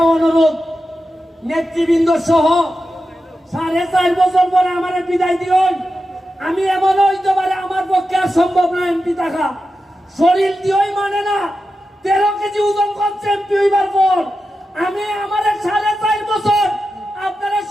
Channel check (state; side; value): normal; both; correlation 0.90